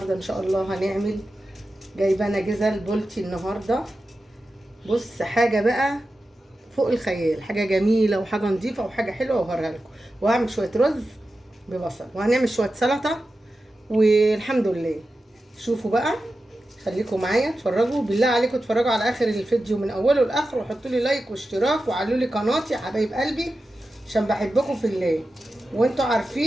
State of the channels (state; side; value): normal; both; correlation 0.92